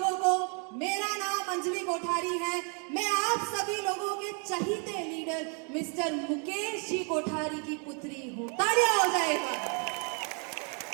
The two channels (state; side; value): quieter; left; 38.8 dB